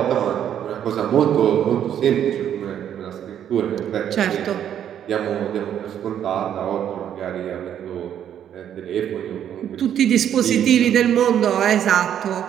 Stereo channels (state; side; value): quieter; left; 9.8 dB